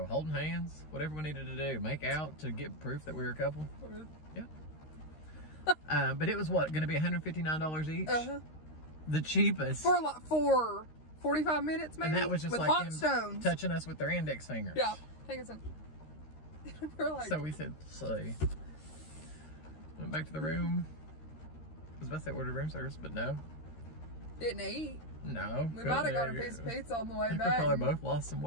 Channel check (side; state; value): right; late; 13 ms